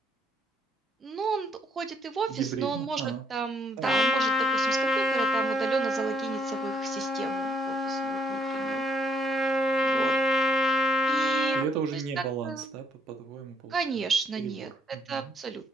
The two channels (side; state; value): both; normal; correlation 0.69